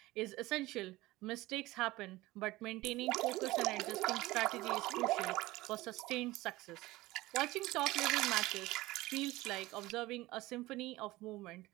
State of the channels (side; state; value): left; quieter; 18.9 dB